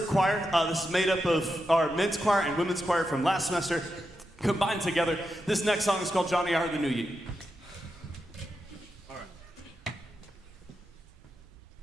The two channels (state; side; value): normal; both; correlation 0.87